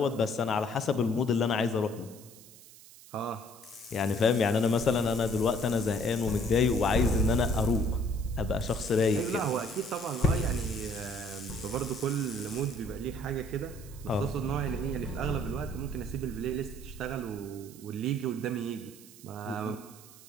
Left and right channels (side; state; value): right; noise; hiss, 20 dB below the sound